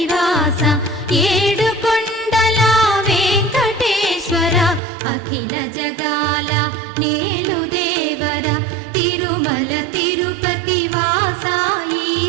ఏడుకొండల వెంకటేశ్వర అఖిల జగాల నేలు దేవర తిరుమల తిరుపతి వాస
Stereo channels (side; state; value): left; drops out; at 4.8 s